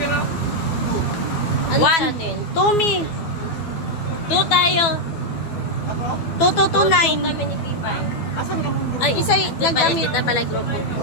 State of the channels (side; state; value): right; late; 12 ms